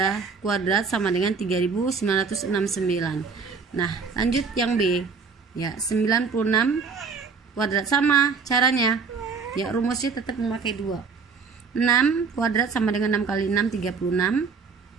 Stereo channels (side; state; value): left; quieter; 5.3 dB